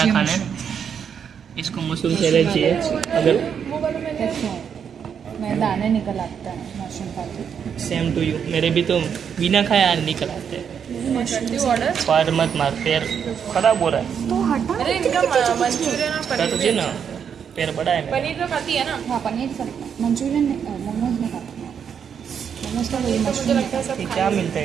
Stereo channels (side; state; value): left; quieter; 7.5 dB